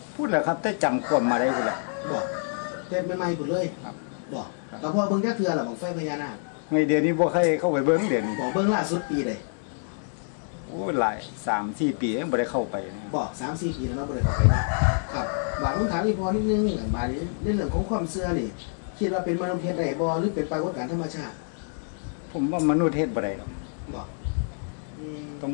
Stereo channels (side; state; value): right; silent; 60 dB below the other